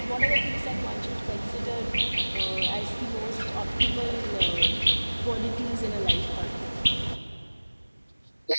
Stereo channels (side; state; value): both; inverted; correlation -1.00